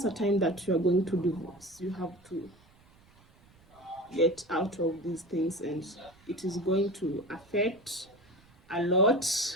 a time that you are going to divorce, you have to get out of these things, and it is going to affect a lot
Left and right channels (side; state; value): right; noise; rumble, 28 dB below the sound